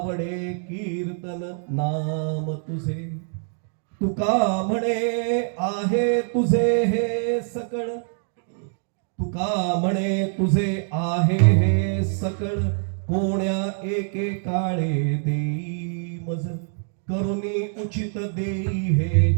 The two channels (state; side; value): silent; left; 57 dB below the other